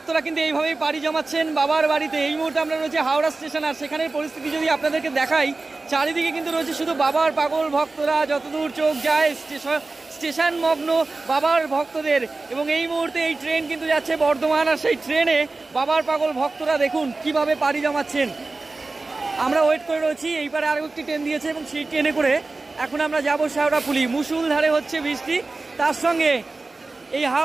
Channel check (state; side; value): quieter; left; 3.5 dB